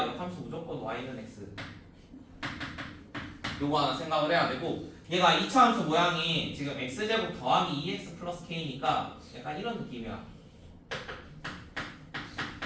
역함수 무조건 y는 x. 요거 하나 생각을 해야 되고 얘가 2차 함수 모양이 지금 x제곱 더하기 2x 플러스 k니까 약간 이런 느낌이야.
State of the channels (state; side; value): identical; both; correlation 1.00